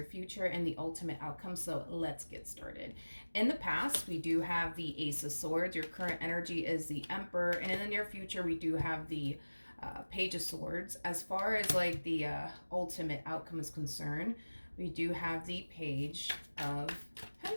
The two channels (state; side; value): inverted; both; correlation -1.00